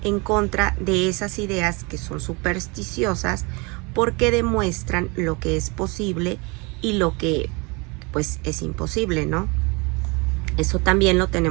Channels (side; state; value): left; quieter; 28.3 dB